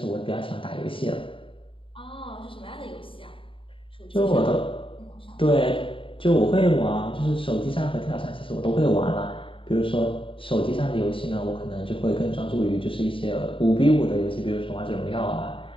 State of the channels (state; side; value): late; right; 0.25 ms